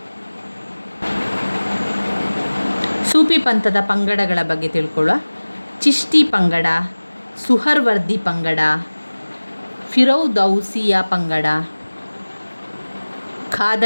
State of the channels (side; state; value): both; inverted; correlation -1.00